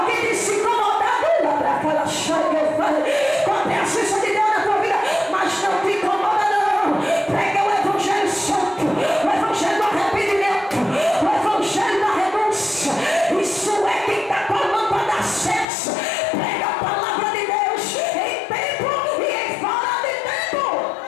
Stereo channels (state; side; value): drops out; right; at 15.7 s